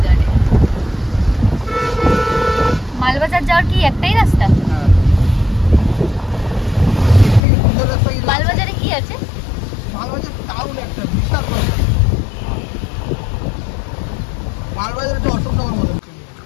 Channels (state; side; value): drops out; right; at 7.4 s